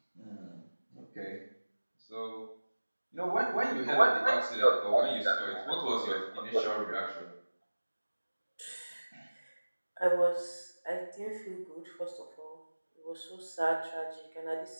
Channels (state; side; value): inverted; both; correlation -1.00